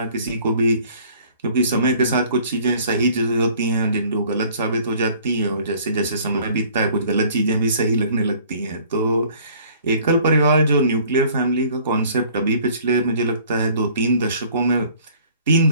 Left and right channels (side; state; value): both; inverted; correlation -0.54